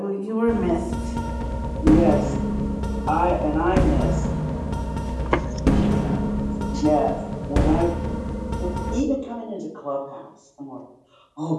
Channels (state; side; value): identical; both; correlation 1.00